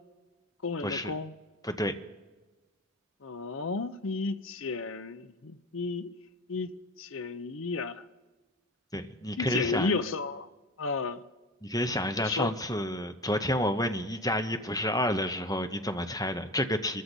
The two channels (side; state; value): both; normal; correlation 0.31